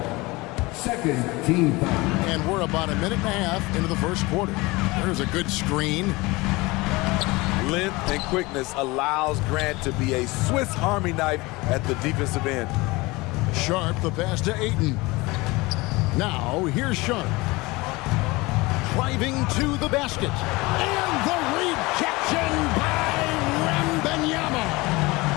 Second team foul. And we're about a minute and a half into the first quarter. There's a good screen. Length and quickness allows Grant to be a Swiss Army knife at the defensive end. Sharp, the pass to Ayton. Now, here's Sharp. Driving to the basket. And the rejection by Wembanyama.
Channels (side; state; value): right; quieter; 22.7 dB